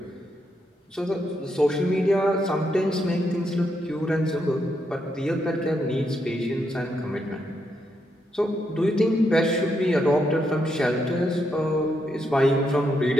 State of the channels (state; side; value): normal; both; correlation 0.80